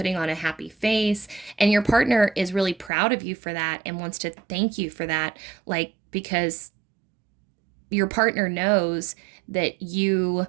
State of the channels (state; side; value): drops out; left; at 2.9 s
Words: on a happy face. And your partner is really proud of you for that and wants to thank you for that, like, because your partner knows that you